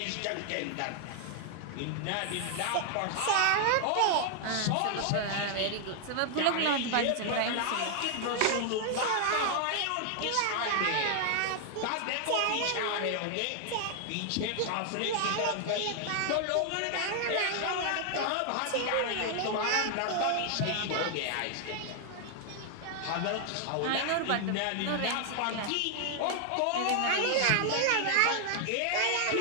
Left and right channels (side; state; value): both; different; correlation 0.00